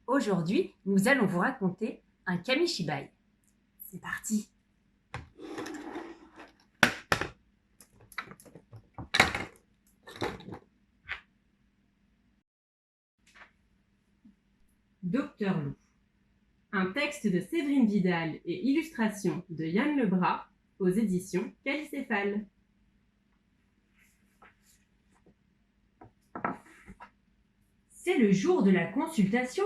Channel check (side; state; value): both; identical; correlation 1.00